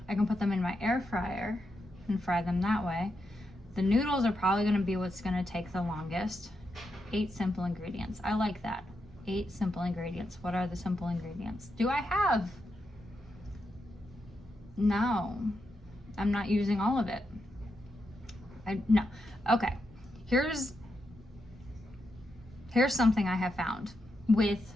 I can put them in my air fryer and fry them that way. The noodles are probably gonna be what's gonna take the longest. 8 simple ingredients. I like that. 8 simple ingredients. What are the simple ingredients? Do I have? No, I'm not using all of it. No. Okay. Here's something I have found with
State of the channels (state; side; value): normal; both; correlation 0.84